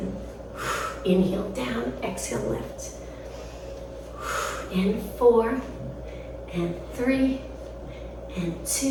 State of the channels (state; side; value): identical; both; correlation 1.00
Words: inhale down, exhale lift. And 4, and 3, and